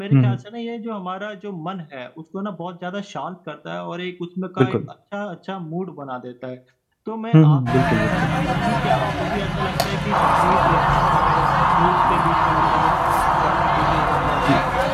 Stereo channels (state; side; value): identical; both; correlation 1.00